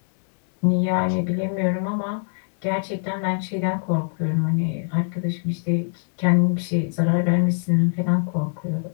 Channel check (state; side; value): silent; right; digital silence